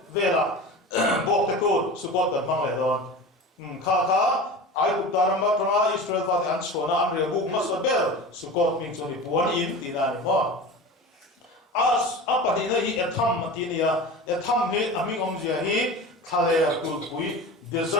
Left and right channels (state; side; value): normal; both; correlation 0.32